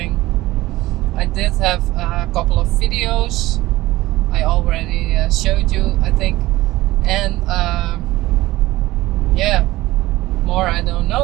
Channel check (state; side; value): quieter; left; 17.8 dB